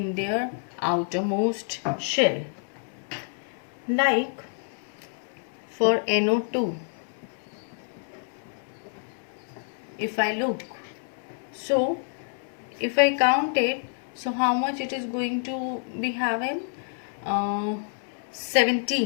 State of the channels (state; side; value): silent; right; digital silence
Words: their outermost shell. Like for NO2, if I look, so if I count it, so how much it is going to be having?